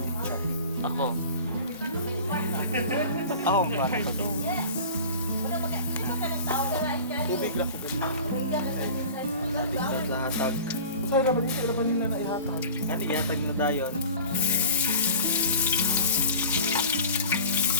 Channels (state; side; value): inverted; both; correlation -0.39